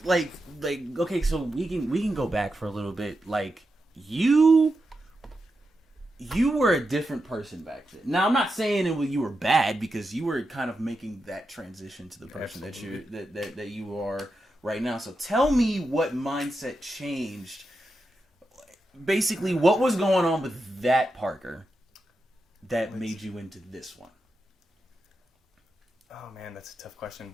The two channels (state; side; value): normal; both; correlation 0.88